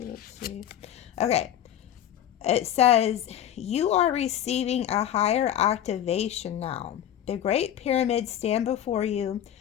see. Okay. It says, you are receiving a higher activation now. The Great Pyramids stand before you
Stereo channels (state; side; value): quieter; right; 10.8 dB